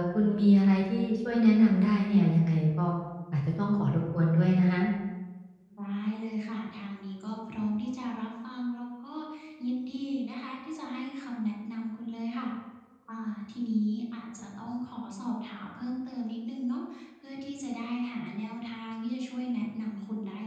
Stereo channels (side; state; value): both; identical; correlation 1.00